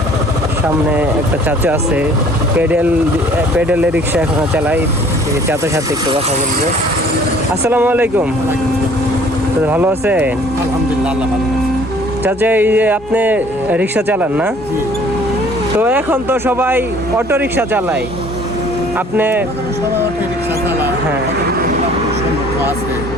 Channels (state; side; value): normal; both; correlation 0.54